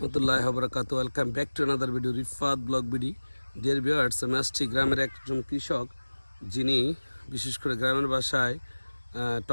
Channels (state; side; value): inverted; both; correlation -1.00